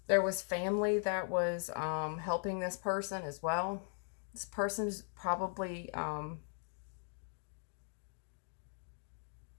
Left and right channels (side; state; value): right; silent; 52 dB below the other